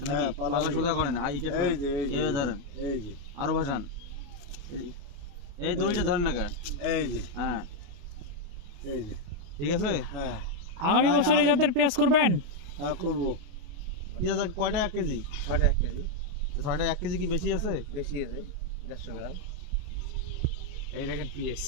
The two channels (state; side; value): late; left; 29 ms